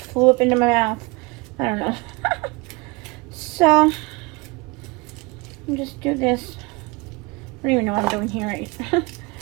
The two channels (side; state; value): left; quieter; 25.5 dB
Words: up into my mouth. I don't know. So, I'll just do this. I don't even know what I'm doing here right.